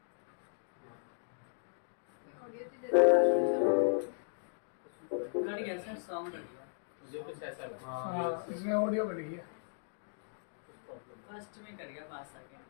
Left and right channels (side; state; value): right; silent; digital silence